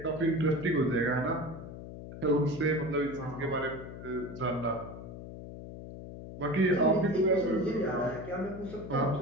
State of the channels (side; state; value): left; noise; hum, 12 dB below the sound